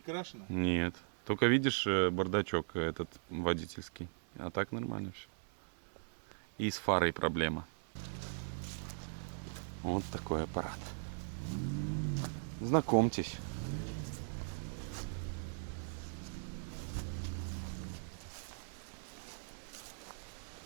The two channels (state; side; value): silent; left; digital silence